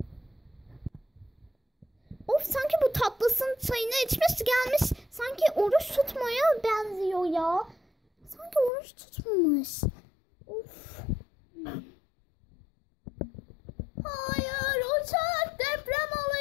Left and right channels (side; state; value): right; drops out; at 8.7 s